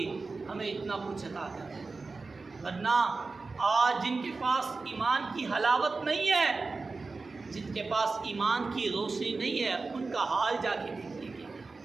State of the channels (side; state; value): left; quieter; 3.9 dB